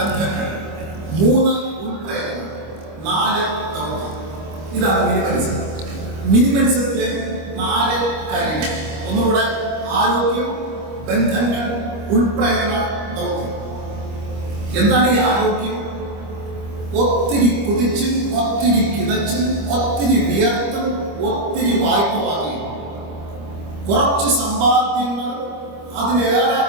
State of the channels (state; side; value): late; left; 25 ms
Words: 3 ഉൾപ്രേരണ, 4 ദൗത്യം. ഇതാണ് മിനിമലിസം. മിനിമലിസത്തിലെ 4 കാര്യങ്ങൾ. ഒന്നുകൂടെ: ആരോഗ്യം, ബന്ധങ്ങൾ, ഉൾപ്രേരണ, ദൗത്യം. എന്താണ് ഈ ആരോഗ്യം? ഒത്തിരി കുതിച്ചും ഒത്തിരി കിതച്ചും ഒത്തിരി വിയർത്തും ഒത്തിരി വായ്പ വാങ്ങി കുറച്ച് സമ്പാദ്യങ്ങൾ അതിലേറെ